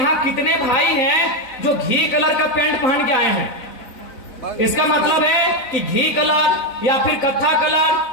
कितने भाई हैं जो घी कलर का पैंट पहन के आए हैं? इसका मतलब है कि घी कलर या फिर कत्था कलर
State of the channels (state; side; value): late; right; 3.9 ms